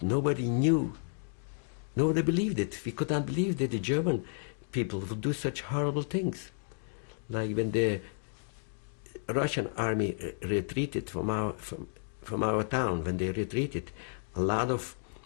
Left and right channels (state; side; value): silent; right; digital silence